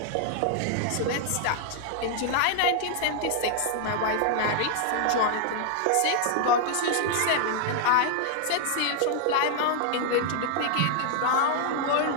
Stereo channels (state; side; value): different; both; correlation -0.01